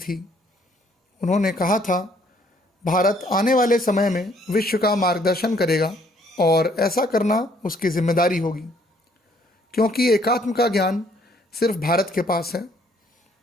उन्होंने कहा था, भारत आने वाले समय में विश्व का मार्गदर्शन करेगा और ऐसा करना उसकी जिम्मेदारी होगी, क्योंकि एकात्म का ज्ञान सिर्फ भारत के पास है।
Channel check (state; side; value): normal; both; correlation 0.64